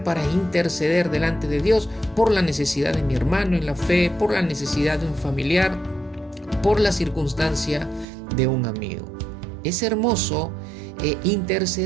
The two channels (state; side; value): drops out; left; at 8.1 s